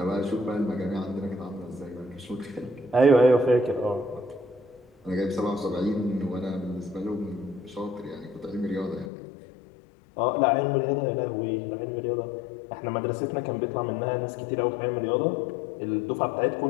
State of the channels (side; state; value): right; drops out; at 9.1 s